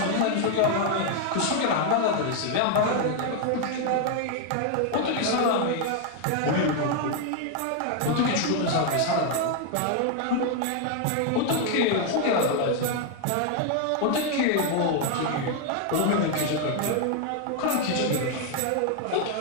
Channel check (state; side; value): different; both; correlation 0.00